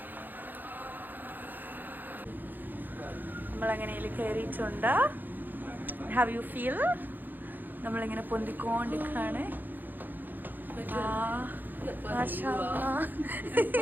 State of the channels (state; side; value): late; left; 0.088 ms